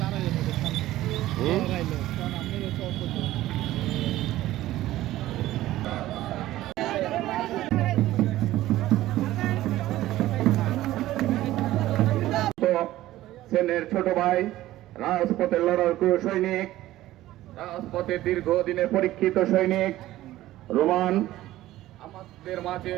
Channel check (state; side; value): quieter; left; 15.3 dB